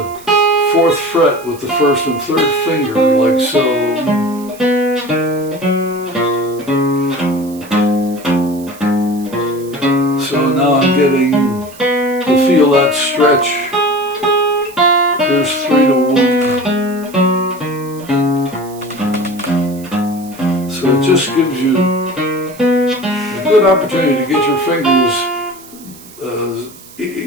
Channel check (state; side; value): noise; right; hiss, 21 dB below the sound